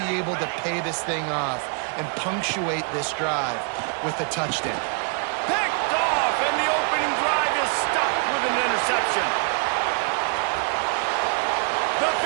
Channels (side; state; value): left; quieter; 39.8 dB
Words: be able to pay this thing off and punctuate this drive with a touchdown. Picked off, and the opening drive is stopped with an interception. The